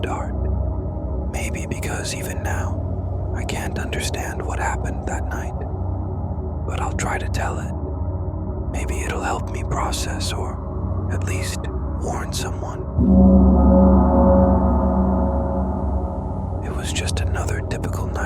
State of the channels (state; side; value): identical; both; correlation 1.00